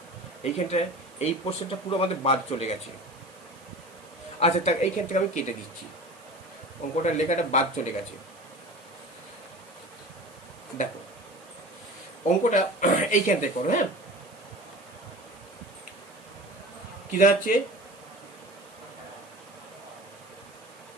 এইখানটায় এই পোর্শনটা পুরো আমাদের বাদ চলে গেছে। আচ্ছা তা এইখান থেকে আমি কেটে দিচ্ছি, অঙ্কটার লেখাটা বাদ চলে গেছে। দেখো অঙ্কটা এইখান থেকে করো। হ্যাঁ, কি দাঁড়াচ্ছে,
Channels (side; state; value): right; noise; hiss, 25 dB below the sound